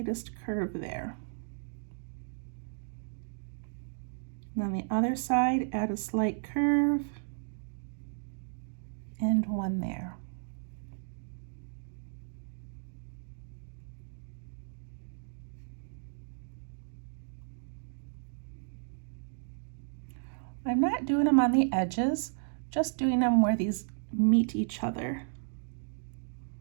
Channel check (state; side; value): silent; left; digital silence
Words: curve there. And on the other side, add a slight curve and one there. I'm not doing them on the edges, just doing them where these meet each other.